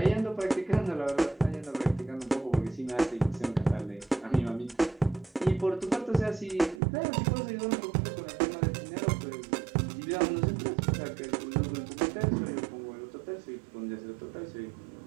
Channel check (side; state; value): left; drops out; at 6.8 s